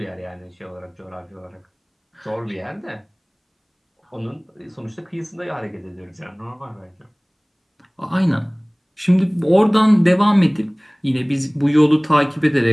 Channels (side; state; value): both; identical; correlation 1.00